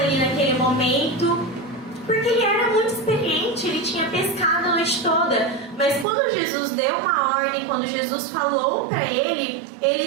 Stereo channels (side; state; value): left; drops out; at 6.1 s